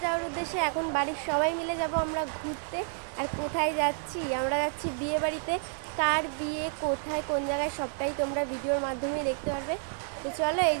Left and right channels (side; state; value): left; silent; 58 dB below the other